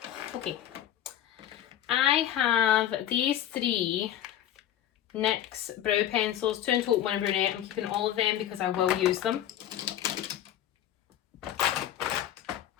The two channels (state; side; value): quieter; right; 11.4 dB